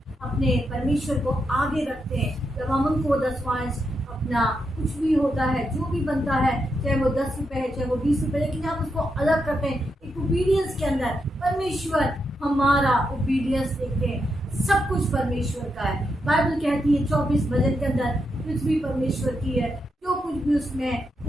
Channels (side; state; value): both; normal; correlation 0.83